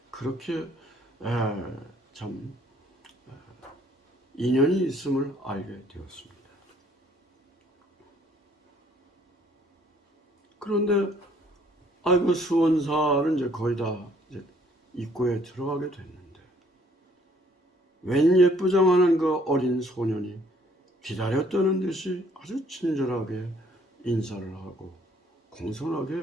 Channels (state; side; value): normal; both; correlation 0.62